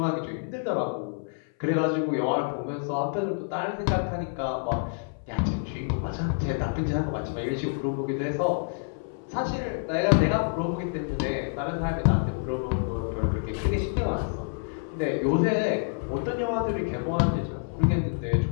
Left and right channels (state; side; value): silent; right; 57 dB below the other